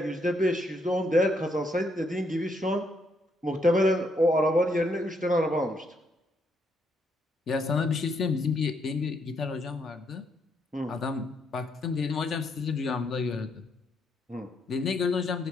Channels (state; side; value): normal; both; correlation 0.75